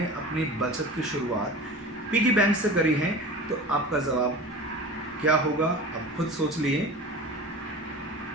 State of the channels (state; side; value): normal; both; correlation 0.34